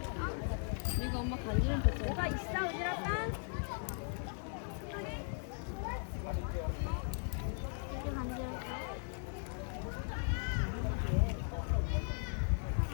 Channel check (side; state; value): right; silent; 52 dB below the other